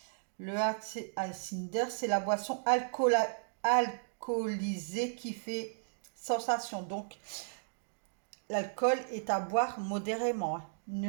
Le hard cider, c'est la boisson alcoolisée qui fait sensation. Donc, l'alcool est à boire modérément.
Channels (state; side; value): silent; left; digital silence